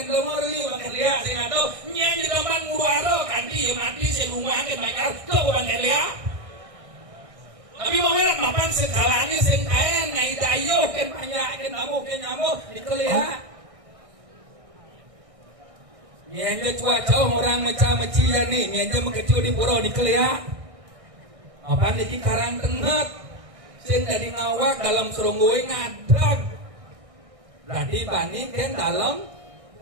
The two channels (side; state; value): left; late; 1.6 ms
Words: lemur bangken liak sing atau nyanyi teman ngubaro kanti ya mati sing rumah ke bakar tuh bangken liak tapi mau lihat mapan sekalanya sing kaya ngai dayo ken banyak ken nyamuk dikelihat nyenje cuaca orang meca-meci ya nih nyenje mengecil di pura dikelihat mapan iki karang tenget sing dari ngawak dalam serungguy ngadag berarti bani ken dalam